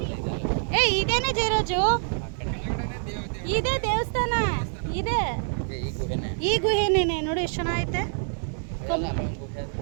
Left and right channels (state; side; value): silent; left; 61 dB below the other